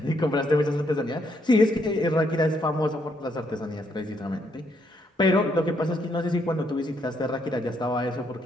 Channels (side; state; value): both; normal; correlation 0.74